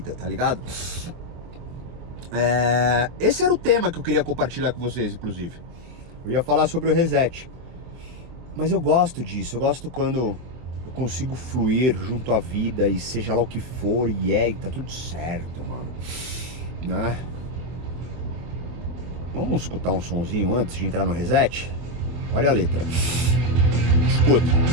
tá ligado? Esse era o tema que eu queria compartilhar com vocês, inclusive. Eu ia falar sobre o reset. Mas eu gosto disso, eu gosto quando eu consigo fluir junto à vida e seja lá o que for, e tá tudo certo, mano. Né? Vamos escutar um sonzinho antes de entrar no reset? Olha a letra. Escuta.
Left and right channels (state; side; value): late; left; 24 ms